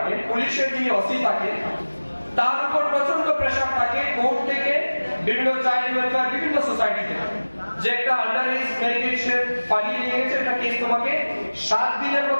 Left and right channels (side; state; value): both; inverted; correlation -1.00